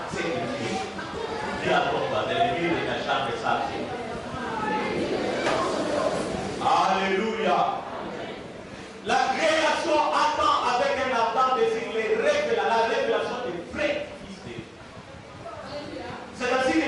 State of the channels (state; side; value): identical; both; correlation 1.00